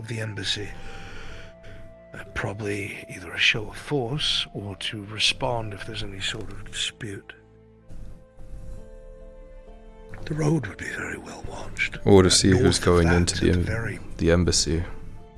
the embassy. Probably either a show of force or to respond if there's any sort of dispute. The road would be very well watched. Or to see who's North of going that, into at very the embassy.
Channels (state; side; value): identical; both; correlation 1.00